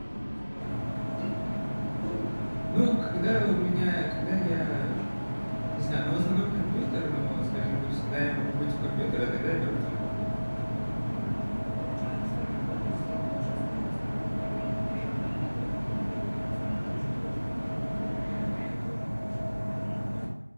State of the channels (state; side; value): inverted; both; correlation -1.00